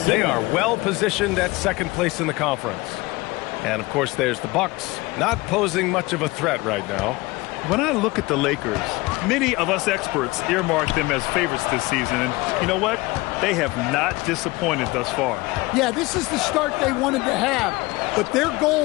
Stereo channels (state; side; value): quieter; right; 22.0 dB